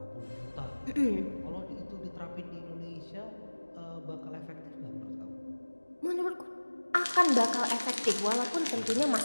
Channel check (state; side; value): inverted; both; correlation -1.00